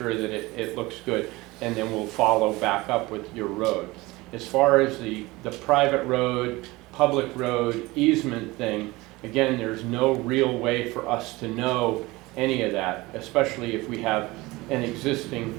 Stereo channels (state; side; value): quieter; left; 21.2 dB